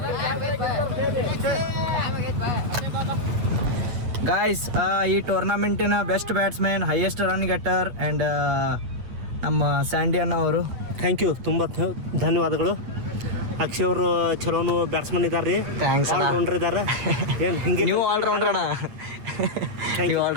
ಗಾಯ್ಸ್, ಈ ಟೂರ್ನಮೆಂಟಿನ best batsman, highest run getter and ನಮ್ಮ ಸ್ಯಾಂಡಿ ಅಣ್ಣ ಅವರು. ಥ್ಯಾಂಕ್ ಯು, ತುಂಬ ಧನ್ಯವಾದಗಳು. ಅಕ್ಷಯ್ ಅವರು ಚಲೋನು ಬ್ಯಾಟ್ಸ್ಮನ್ ಇದ್ದಾರೆ ರೀ, ಥ್ಯಾಂಕ್ಸ್ ಅಣ್ಣ. ಆಲ್ರೌಂಡರ್ ಇದ್ದಾರೆ. ಏನು ಹಿಂಗೆ ನೀವು ಆಲ್ರೌಂಡರ್ ಅಣ್ಣ, ನೀವು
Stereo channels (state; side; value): late; left; 8.8 ms